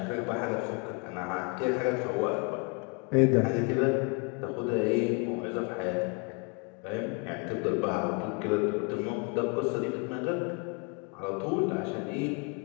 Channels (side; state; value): right; quieter; 33.3 dB